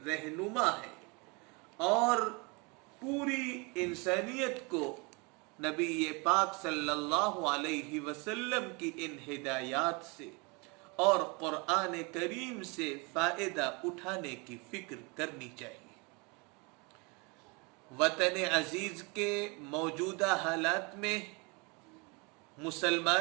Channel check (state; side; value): quieter; left; 29.4 dB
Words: رہنما ہے اور پوری انسانیت کو نبی پاک صلی اللہ علیہ وسلم کی ان ہدایات سے اور قرآن کریم سے فائدہ اٹھانے کی فکر کرنی چاہیے. وطن عزیز کے موجودہ حالات میں